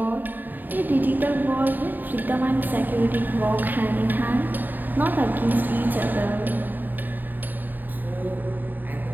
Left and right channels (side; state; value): left; late; 0.089 ms